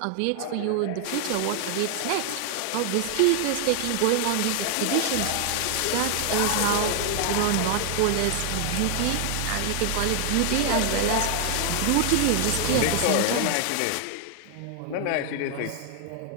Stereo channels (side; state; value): both; different; correlation 0.00